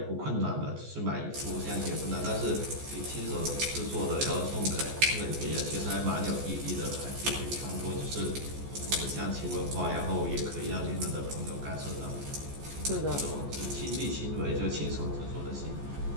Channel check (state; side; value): late; left; 14 ms